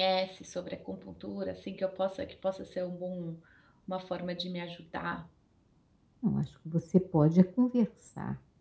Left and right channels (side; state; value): both; identical; correlation 1.00